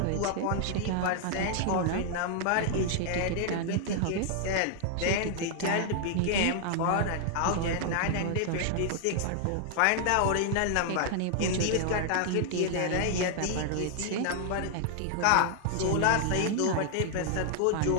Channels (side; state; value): both; different; correlation 0.00